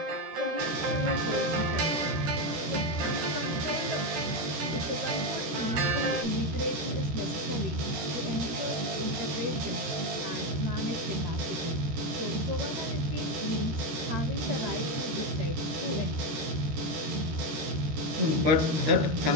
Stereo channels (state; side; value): late; left; 13 ms